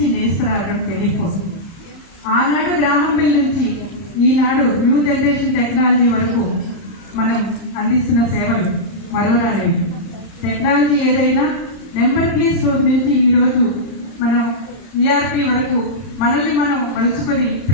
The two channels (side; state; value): right; late; 30 ms